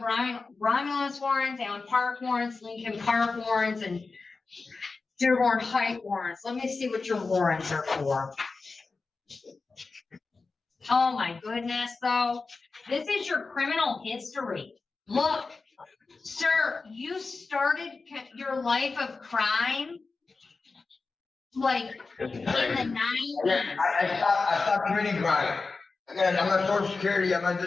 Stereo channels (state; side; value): quieter; right; 4.1 dB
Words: Romulus warrants, Allen Park warrants, Lincoln Park warrants, and Dearborn Height warrants. Let me see what your warrants are for. Oh my goodness, though. This is your criminal history. Look, sir, you started your life of crime like in the 90s. I stopped committing crime. Again, I'm on Social Security, I'm on